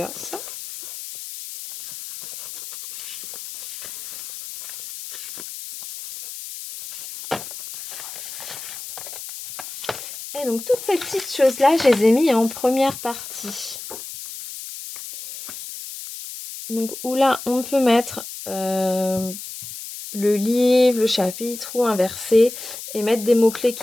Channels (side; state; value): left; noise; hiss, 11 dB below the sound